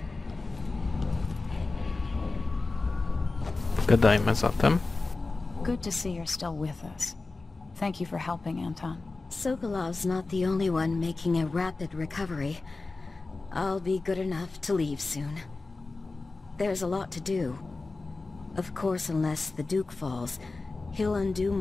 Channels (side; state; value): right; quieter; 3.6 dB